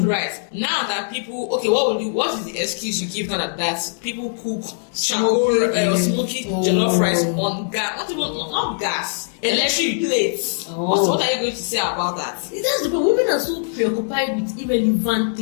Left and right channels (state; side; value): silent; right; digital silence